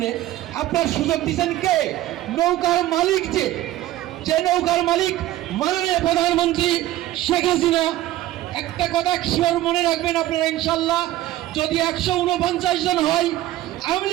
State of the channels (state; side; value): quieter; left; 14.8 dB